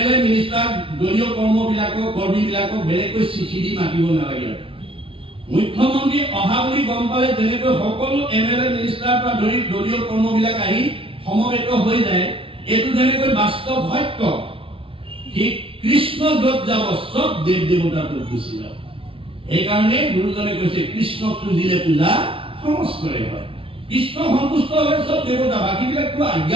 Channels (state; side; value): late; left; 0.26 ms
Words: মিনিষ্টাৰ দলীয় কৰ্মীবিলাকক বেলেগকৈ চিঠি দি মাতিব নালাগে। মুখ্যমন্ত্ৰী অহা বুলি গম পালে যেনেকৈ সকলো MLA মিনিষ্টাৰ পৰা ধৰি দলীয় কৰ্মবিলাক আহি সমবেত হৈ যায়, এইটো যেনেকৈ বাস্তৱ সত্য, ঠিক কৃষ্ণ য'ত যাব চব দেৱ দেৱতাত গুচি যাব। সেইকাৰণে গুৰুজনে কৈছে কৃষ্ণক পুজিলে পূজা সমস্তৰে হয়। কৃষ্ণ সন্তুষ্ট হ'লে চব দেৱতা, বাকীবিলাকতো